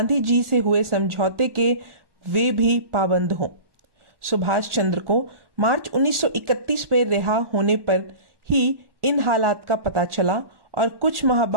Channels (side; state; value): left; late; 1.4 ms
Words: जी से हुए समझौते के वे भी पाबंद हों। सुभाष चंद्र को मार्च 1931 में रिहा होने पर ही इन हालात का पता चला और कुछ माह